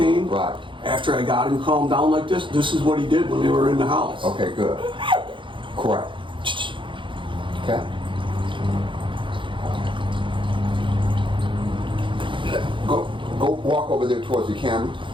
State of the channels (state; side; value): late; left; 0.24 ms